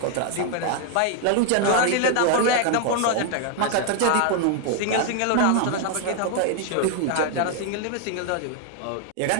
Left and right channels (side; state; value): both; different; correlation 0.00